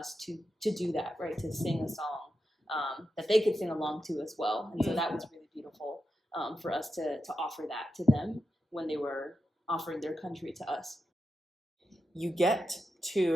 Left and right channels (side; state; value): both; normal; correlation 0.88